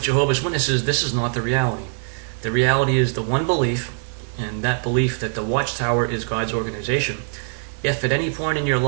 Jehovah's Witnesses, this is not the reality. The reality is the one belief, and that belief that the Watchtower is God's organization. If at any point in your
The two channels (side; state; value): left; silent; digital silence